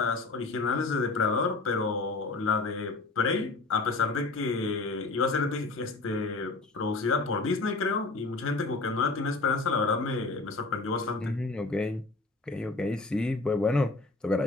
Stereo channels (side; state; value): right; quieter; 3.5 dB